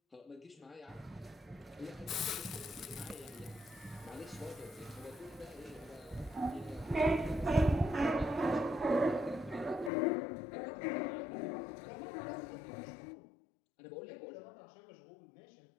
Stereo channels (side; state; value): right; drops out; at 9.9 s